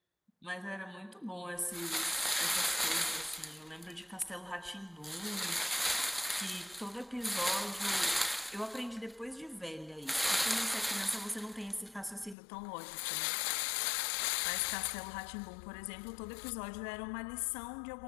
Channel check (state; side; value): drops out; right; at 12.4 s